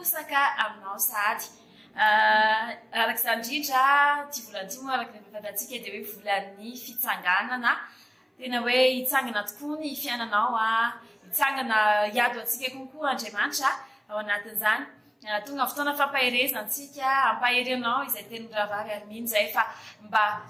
aminao sahady arak'izany indrindra ty volan'ity moa araka rehefa fantatsika dia hoe volan'ny fitsanganana tena hoe hitsangana tokoa ny fiainanao a hitsangana hiado antsika konkoa Andriamanitra ao anatin'izany tonga fotoana fampaherezantsika ampaherenao izay teny miravary ary mino zay fa mba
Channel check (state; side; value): identical; both; correlation 1.00